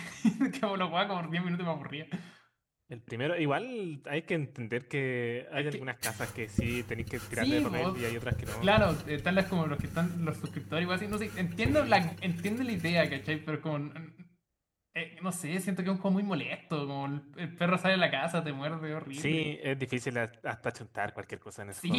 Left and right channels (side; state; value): both; identical; correlation 1.00